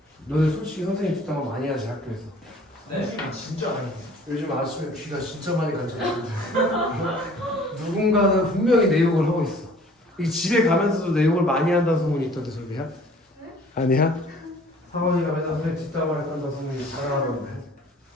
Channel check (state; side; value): normal; both; correlation 0.52